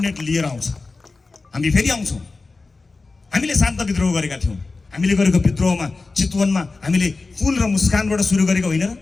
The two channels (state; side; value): quieter; right; 3.8 dB